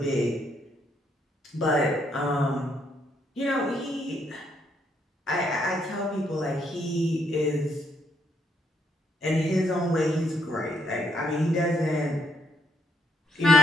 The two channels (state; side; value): normal; both; correlation 0.74